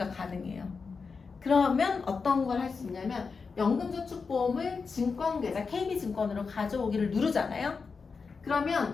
가능해요. 그러면 어떤 걸 할 수 있냐면 연금저축보험을 증권계좌 KB증권으로 가져오기를 누르잖아요.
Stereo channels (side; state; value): right; quieter; 4.9 dB